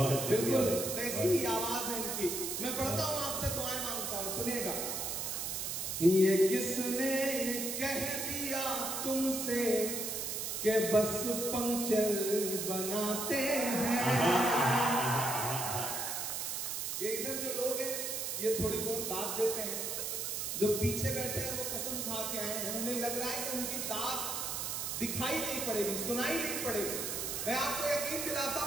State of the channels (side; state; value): right; noise; hiss, 2 dB below the sound